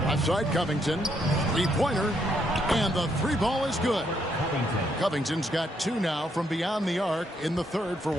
Outside Covington. Three-pointer. And the 3-ball is good. Covington's got 2 now from beyond the arc in the 3rd for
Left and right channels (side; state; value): both; normal; correlation 0.74